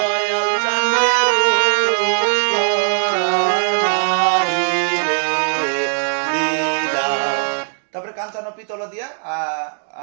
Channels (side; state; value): left; silent; digital silence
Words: চাঁদে, রূপা নাহি রে দিলা। তারপরে কাঞ্চানো পিতল দিয়া